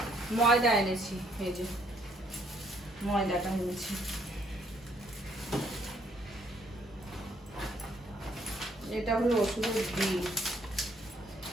ময়দা এনেছি, এই যে ময়দাটা এনেছি। এটা হলো ওষুধের বিল।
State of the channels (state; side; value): normal; both; correlation 0.67